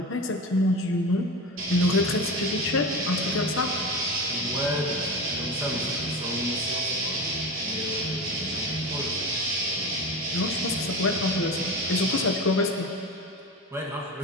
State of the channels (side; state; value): both; normal; correlation 0.26